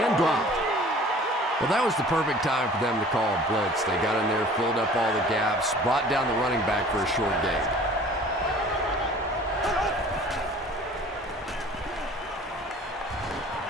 dropped. Well, that was the perfect time for them to call a blitz. They got in there, filled up all the gaps, brought down the running back for a short gain.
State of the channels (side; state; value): both; normal; correlation 0.48